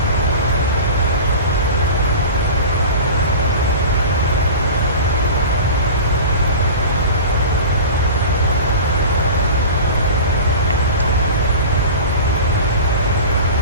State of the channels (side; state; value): both; inverted; correlation -0.34